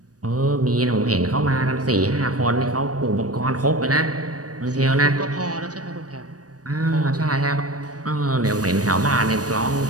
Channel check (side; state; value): left; late; 0.68 ms